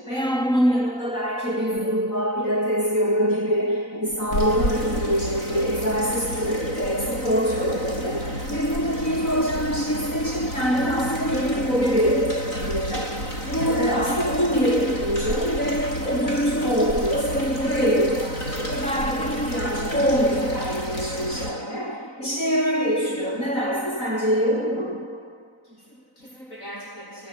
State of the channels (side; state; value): right; late; 4.0 ms